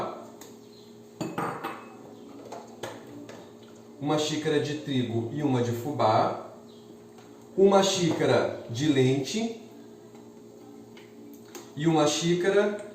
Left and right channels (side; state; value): both; identical; correlation 1.00